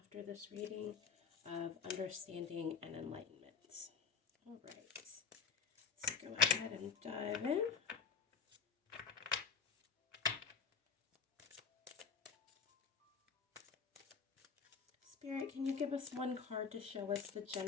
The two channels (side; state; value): right; quieter; 6.0 dB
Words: this reading of understanding and enlightenment. All right, let's go ahead and dive in. Spirit, can you give us one card to show us the